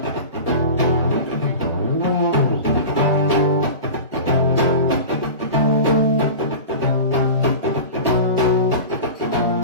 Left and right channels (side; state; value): both; inverted; correlation -0.32